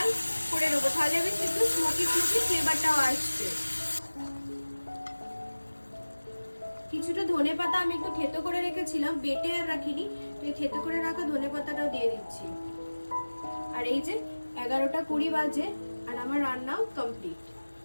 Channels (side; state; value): both; inverted; correlation -1.00